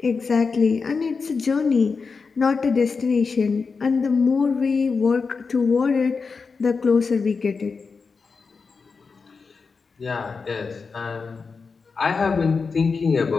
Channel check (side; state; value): right; quieter; 4.9 dB